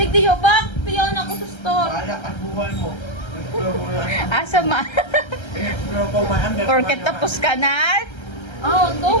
tiyo, bak! Tiyo na ako sa store. Bahala ka buwan mo. In-explore ko lang. Asa ma? In-explore ko man. Porket tapos ka na? Oo, to.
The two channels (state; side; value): late; right; 1.3 ms